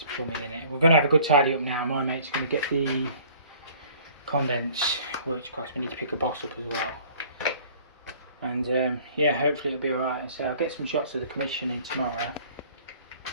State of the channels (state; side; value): inverted; both; correlation -0.52